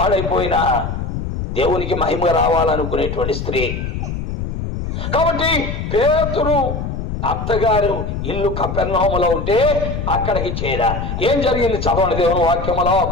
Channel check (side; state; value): left; noise; rumble, 4 dB below the sound